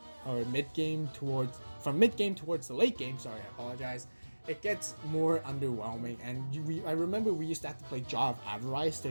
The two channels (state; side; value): inverted; both; correlation -1.00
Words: or mid game from mid game towards the late game, sorry, I apologize, it gets more underwhelming. And I remember we used to have to play Jaw of Avarice